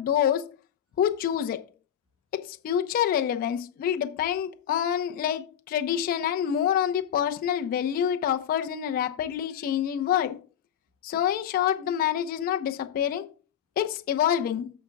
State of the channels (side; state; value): right; quieter; 9.4 dB